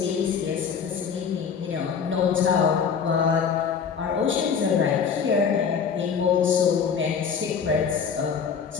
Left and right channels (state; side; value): quieter; right; 6.6 dB